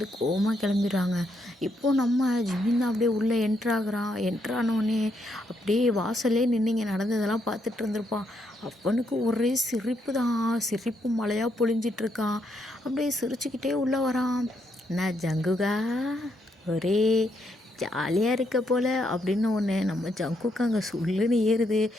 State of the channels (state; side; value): normal; both; correlation 0.77